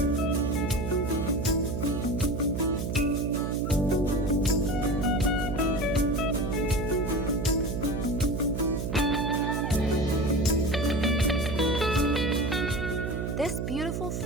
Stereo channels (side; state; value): right; noise; hum, 3 dB below the sound